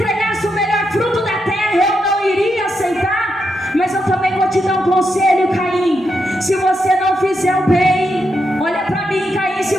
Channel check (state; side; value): normal; both; correlation 0.83